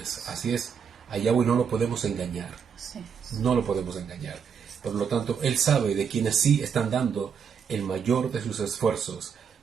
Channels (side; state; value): left; quieter; 6.9 dB